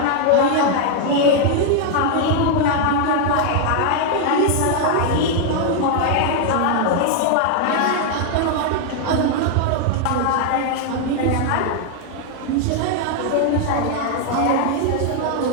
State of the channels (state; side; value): different; both; correlation 0.00